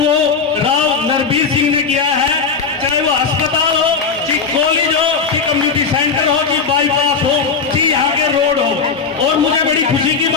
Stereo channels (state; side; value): quieter; right; 5.1 dB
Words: राव नरबीर सिंह ने किया है। चाहे वो अस्पताल हो, कि कॉलेज हो, कि कम्युनिटी सेंटर हो, कि बाईपास हो, कि यहाँ के रोड हो। और मुझे बड़ी खुशी की